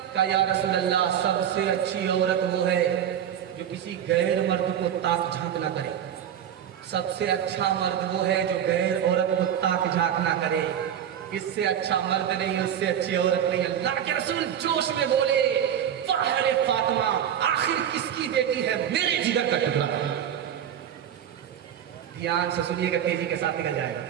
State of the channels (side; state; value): left; quieter; 9.7 dB